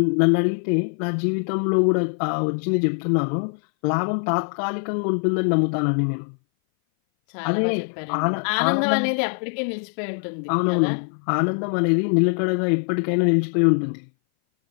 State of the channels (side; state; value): right; silent; 59 dB below the other